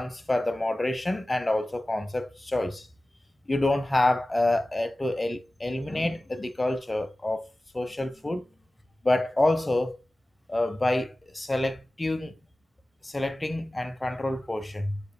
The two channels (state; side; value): normal; both; correlation 0.96